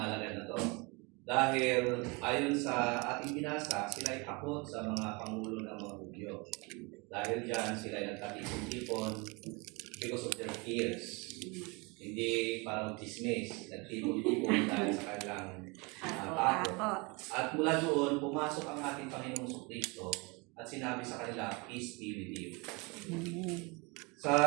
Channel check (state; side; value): quieter; left; 28.3 dB